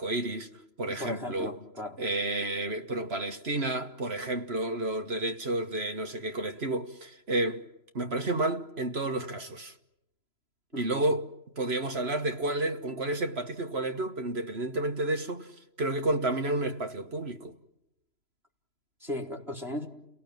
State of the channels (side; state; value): left; late; 3.0 ms